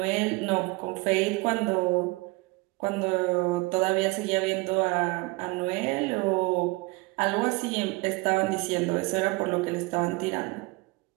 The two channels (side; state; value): left; quieter; 24.9 dB